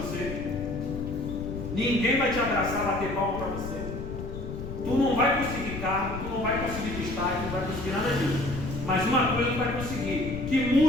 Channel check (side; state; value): left; noise; rumble, 7 dB below the sound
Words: ninguém vai te abraçar, bater palma para você, tu não vai conseguir carro, tu não vai conseguir destaque, não vai conseguir nada disso. Mas uma coisa tu vai conseguir, que